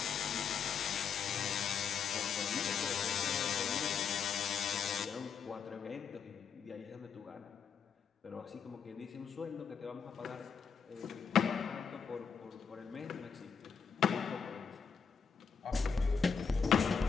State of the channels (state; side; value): quieter; right; 6.4 dB